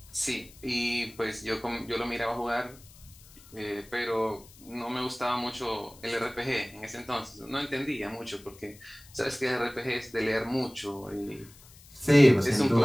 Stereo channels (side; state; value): left; noise; hiss, 23 dB below the sound